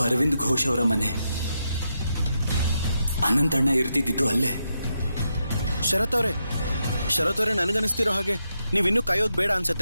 ಅರವಿಂದ್ ಘೋಷ್ ಅವರ ಮನೆ. ಅನಂತಣ್ಣ ಇರ್ತಿದ್ದು ಅಲ್ಲೇ. ಶರತ್ ಅವರೇ, ಶರತ್ ಅವರೇ, ನನಗನ್ನಿಸ್ತಿರೋ ಹಾಗೆ ನೀವಿನ್ನೂ ಕಾಯೋದು ಬೇಡ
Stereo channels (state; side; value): inverted; both; correlation -0.84